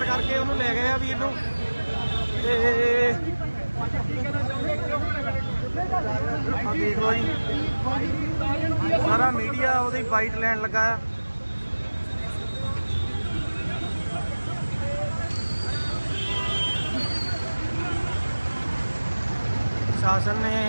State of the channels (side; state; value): both; inverted; correlation -1.00